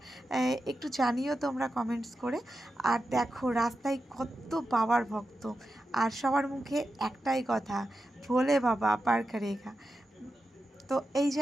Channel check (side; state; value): both; normal; correlation 0.90